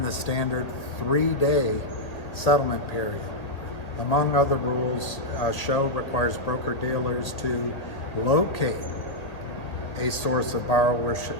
the standard 3-day settlement period. Among other rules, Show requires broker-dealers to locate a source of borrowable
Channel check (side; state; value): right; late; 1.7 ms